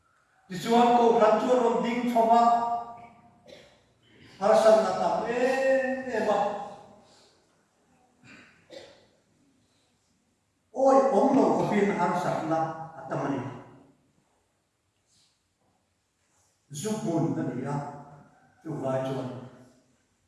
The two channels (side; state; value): both; identical; correlation 1.00